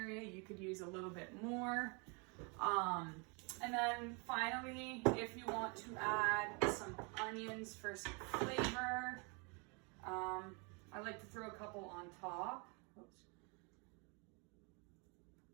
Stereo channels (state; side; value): quieter; left; 32.7 dB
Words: you could use a little bit more. And then finally, if you want to add some onions for some flavor, I like to throw a couple on top. Oops.